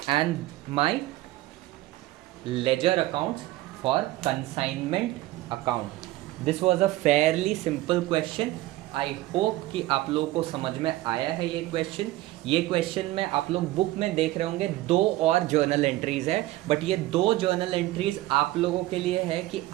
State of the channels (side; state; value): left; quieter; 17.1 dB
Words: and my ledger accounts for consignment account. This was a fairly simple question. I hope कि आप लोगों को समझ में आया है ये क्वेश्चन. ये क्वेश्चन में आप लोग बुक में देख रहे होंगे 2 और जर्नल एंट्रीज है. बट ये 2 जर्नल एंट्रीज आप लोगों के लिए है कि